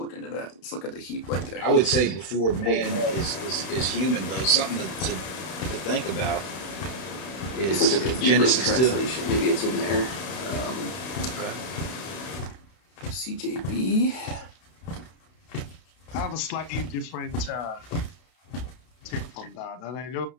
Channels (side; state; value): right; late; 32 ms